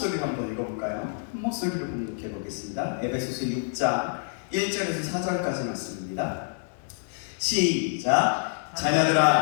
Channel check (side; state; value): right; silent; digital silence